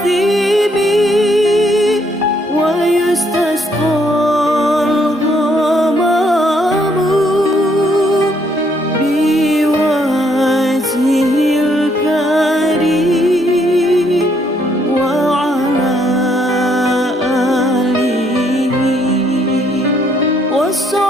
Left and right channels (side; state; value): both; normal; correlation 0.70